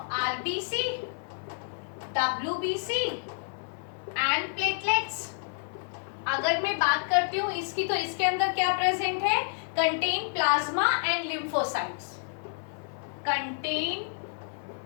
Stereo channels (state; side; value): silent; right; 58 dB below the other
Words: RBC, WBC and platelets. अगर मैं बात करती हूं इसकी, तो इसके अंदर क्या प्रेजेंट है? Contain plasma and lymphocytes, contain